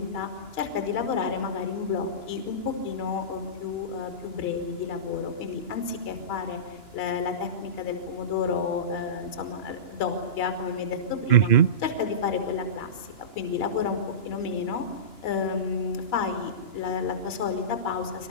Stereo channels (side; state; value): right; late; 2.9 ms